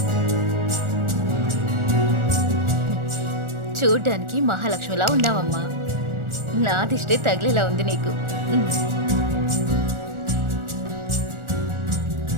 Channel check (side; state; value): left; late; 1.4 ms